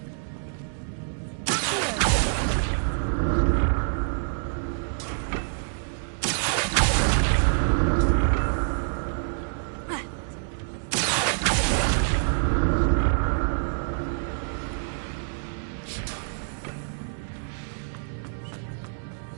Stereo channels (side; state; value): left; silent; digital silence